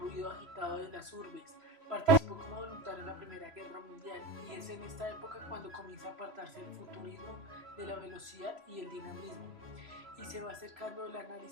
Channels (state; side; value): late; left; 3.0 ms